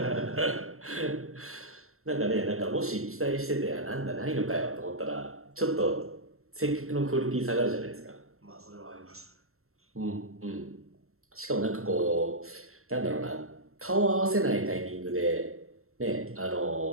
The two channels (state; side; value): late; left; 0.62 ms